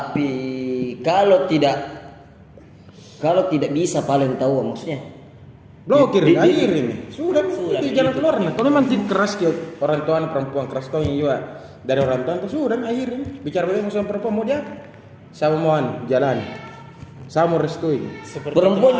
kalau tidak bisa paling tahu maksudnya. Blokir, Di- akhir ini. Sudah, Sudah, itu jalan begitu. keluar nih. Kalau memang keras ke orang tua perempuan keras tuh juga dari orang tua itu sudah akhir ini. Bicara bagaimana sama perempuan mau dia sama mohon jalan. Saya mau restui. seperti Perempuan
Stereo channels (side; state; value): both; identical; correlation 1.00